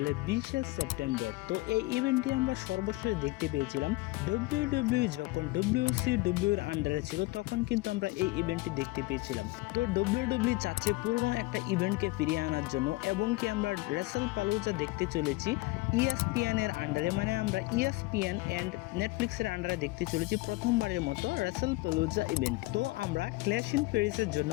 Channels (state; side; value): quieter; right; 21.5 dB